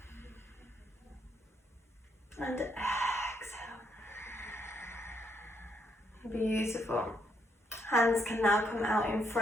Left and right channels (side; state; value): both; normal; correlation 0.75